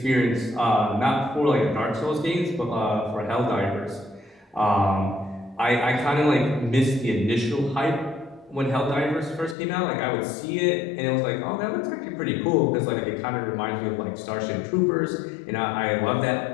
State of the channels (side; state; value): right; drops out; at 9.6 s